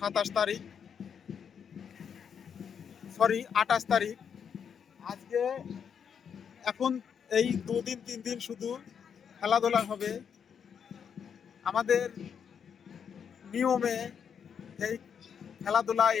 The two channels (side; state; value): right; quieter; 7.4 dB